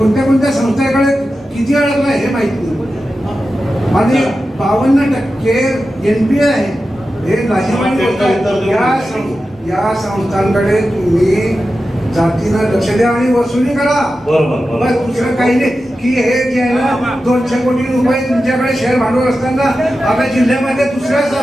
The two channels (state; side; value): normal; both; correlation 0.92